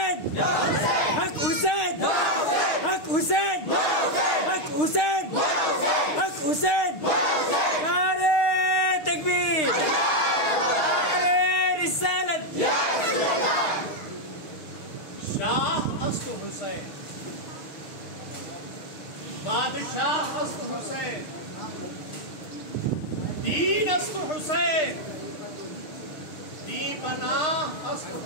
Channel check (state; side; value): late; right; 6.5 ms